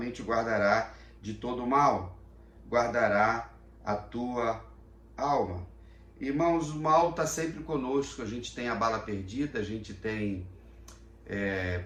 guardará de todo mal, guardará a tua alma. Irmãos, o mal está sempre conosco, a gente tem a bala perdida, a gente tem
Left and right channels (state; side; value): identical; both; correlation 1.00